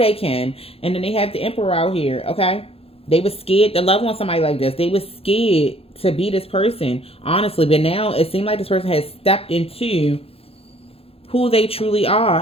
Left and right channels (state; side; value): late; right; 0.28 ms